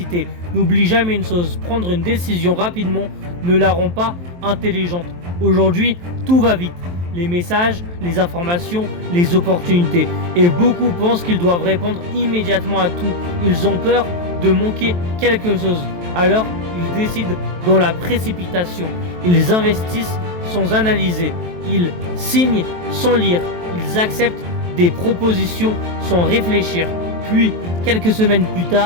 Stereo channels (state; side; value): late; left; 23 ms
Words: N'oublie jamais une chose, prendre une décision rapidement ne la rend pas intelligente. Aujourd'hui, tout va vite. Les messages, les informations, les opportunités. Et beaucoup pensent qu'ils doivent répondre immédiatement à tout. Ils ont peur de manquer quelque chose. Alors, ils décident dans la précipitation. Ils investissent sans analyser. Ils signent sans lire. Ils acceptent des propositions sans réfléchir. Puis, quelques semaines plus